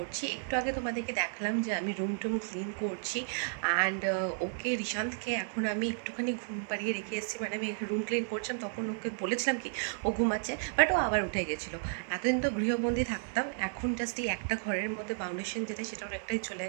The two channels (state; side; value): silent; left; 56 dB below the other